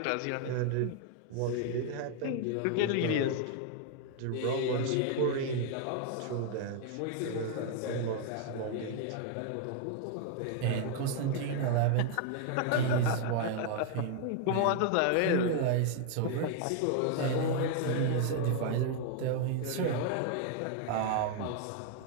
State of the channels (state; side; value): different; both; correlation 0.00